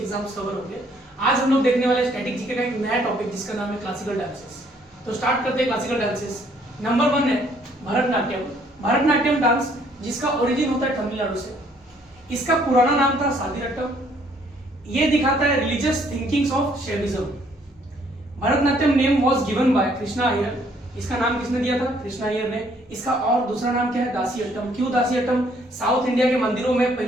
कवर होंगे। आज हम लोग देखने वाले स्टैटिक जीके का एक नया टॉपिक जिसका नाम है क्लासिकल डांसेस। तो स्टार्ट करते हैं क्लासिकल डांसेस। नंबर 1 है भरतनाट्यम। भरतनाट्यम डांस जिसका ओरिजिन होता है तमिलनाडु से। इसका पुराना नाम था सादीरट्टम। ये दिखाता है religious thinkings of Shaivism. Bharatanatyam name was given by Krishna Iyer. इसका नाम किसने दिया था? कृष्णा अय्यर ने। इसका और दूसरा नाम क्या है? दासीअट्टम। क्यों दासीअट्टम? साउथ इंडिया के मंदिरों में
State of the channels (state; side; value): normal; both; correlation 0.64